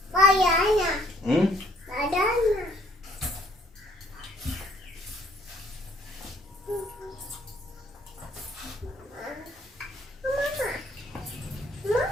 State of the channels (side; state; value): both; normal; correlation 0.63